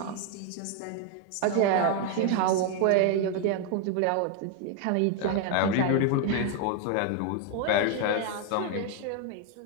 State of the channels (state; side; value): different; both; correlation 0.01